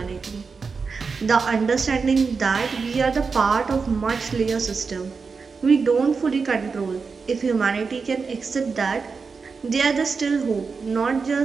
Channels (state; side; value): quieter; left; 5.0 dB